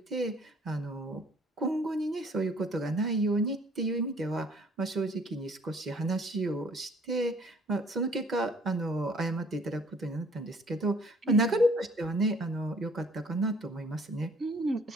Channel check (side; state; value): both; normal; correlation 0.58